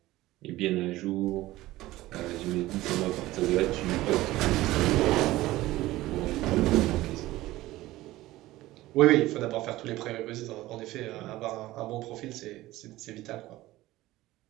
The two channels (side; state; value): left; quieter; 17.2 dB